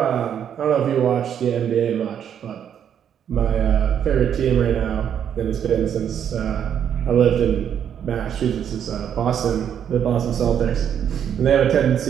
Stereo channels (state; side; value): quieter; left; 8.9 dB